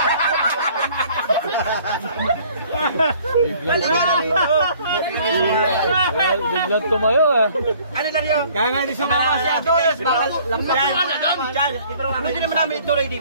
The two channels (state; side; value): inverted; both; correlation -0.56